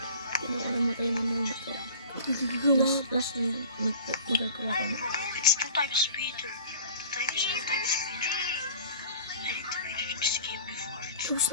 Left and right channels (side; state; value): both; inverted; correlation -0.43